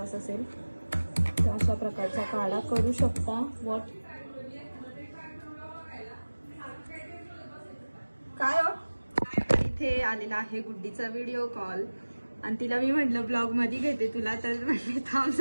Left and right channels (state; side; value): inverted; both; correlation -1.00